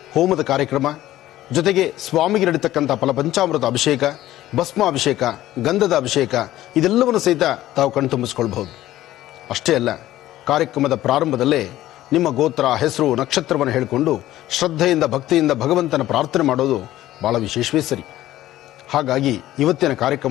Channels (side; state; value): right; quieter; 14.5 dB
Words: ಹೋಮದ ಕಾರ್ಯಕ್ರಮ ಜೊತೆಗೆ ಸ್ವಾಮಿಗೆ ನಡೀತಕ್ಕಂಥ ಫಲಪಂಚಾಮೃತ ಅಭಿಷೇಕ, ಭಸ್ಮಾಭಿಷೇಕ, ಗಂಧದ ಅಭಿಷೇಕ ಇದೆಲ್ಲವನ್ನು ಸಹಿತ ತಾವು ಕಣ್ತುಂಬಿಸ್ಕೊಳ್ಬಹುದು. ಅಷ್ಟೇ ಅಲ್ಲ, ಕಾರ್ಯಕ್ರಮದ ಪ್ರಾರಂಭದಲ್ಲೇ ನಿಮ್ಮ ಗೋತ್ರ, ಹೆಸರು, ನಕ್ಷತ್ರವನ್ನು ಹೇಳಿಕೊಂಡು ಶ್ರದ್ಧೆಯಿಂದ ಭಕ್ತಿಯಿಂದ ಭಗವಂತನ ಪ್ರಾರ್ಥನೆ ಮಾಡೋದು ಬಹಳ ವಿಶೇಷವೇ ಸರಿ. ಹಾಗಾಗಿ ಇವತ್ತಿನ